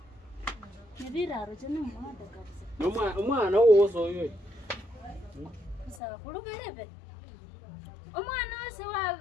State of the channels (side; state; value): right; drops out; at 6.0 s